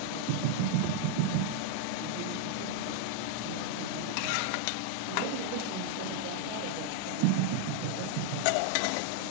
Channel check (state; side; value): different; both; correlation 0.00